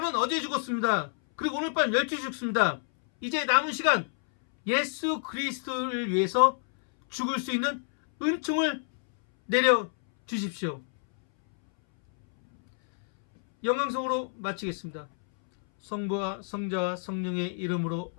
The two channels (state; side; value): silent; right; 59 dB below the other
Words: 어제 죽었습니다. 그리고 오늘 밤 12시 죽습니다. 이제 남은 시간 예수 그리스도를 위해서 죽을 수 있는 은총을 내려주십시오. 영광성으로 마치겠습니다. 성부와 성자와 성령의 이름으로